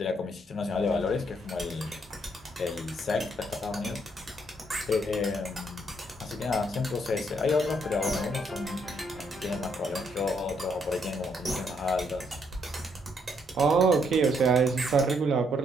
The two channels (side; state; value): both; normal; correlation 0.72